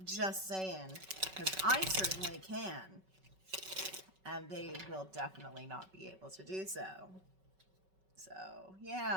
just saying, because I certainly can, and they will definitely not be able to do so. So,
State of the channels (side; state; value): left; late; 5.3 ms